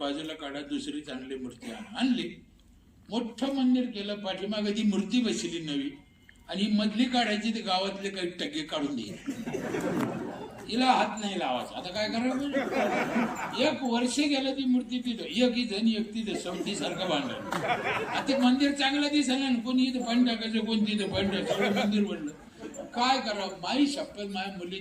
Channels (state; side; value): identical; both; correlation 1.00